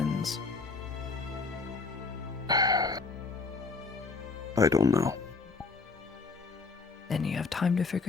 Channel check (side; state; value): right; quieter; 4.2 dB